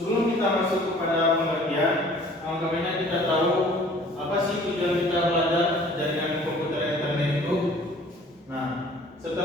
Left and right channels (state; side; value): normal; both; correlation 0.52